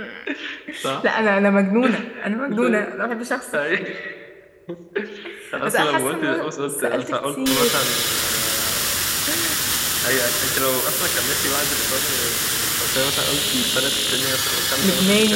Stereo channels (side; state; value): both; identical; correlation 1.00